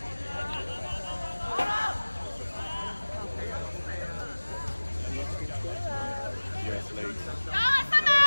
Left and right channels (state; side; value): inverted; both; correlation -1.00